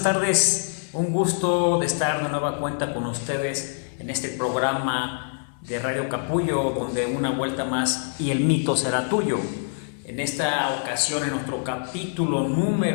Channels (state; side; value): silent; right; 57 dB below the other